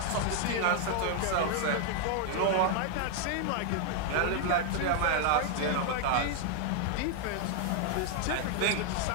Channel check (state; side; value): different; both; correlation 0.01